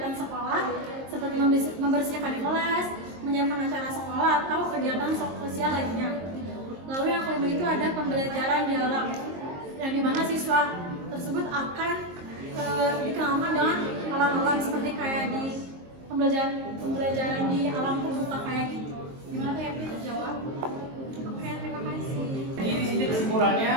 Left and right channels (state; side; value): late; left; 22 ms